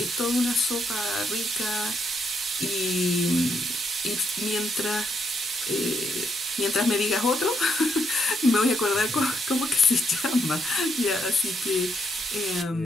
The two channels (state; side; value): normal; both; correlation 0.76